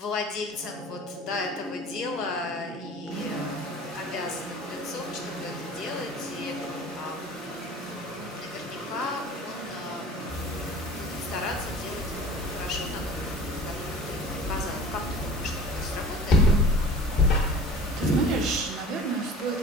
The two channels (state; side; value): normal; both; correlation 0.41